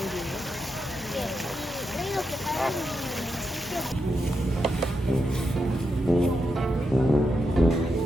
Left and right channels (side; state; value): both; normal; correlation 0.85